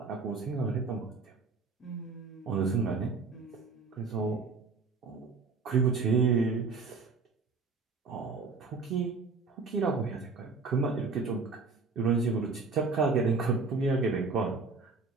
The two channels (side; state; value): left; quieter; 4.4 dB